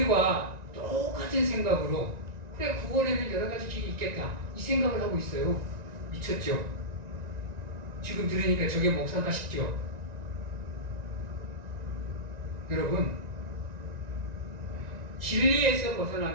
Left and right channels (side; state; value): left; late; 1.9 ms